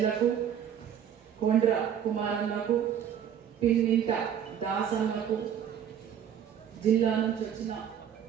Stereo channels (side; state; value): left; quieter; 9.0 dB